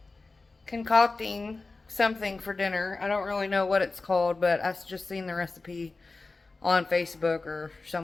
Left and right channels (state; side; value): quieter; right; 3.6 dB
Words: concocting something for dinner. I don't really know what it's called, but I've just seen the recipe on Facebook or